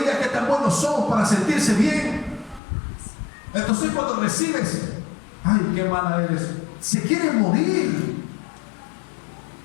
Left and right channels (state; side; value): drops out; right; at 2.6 s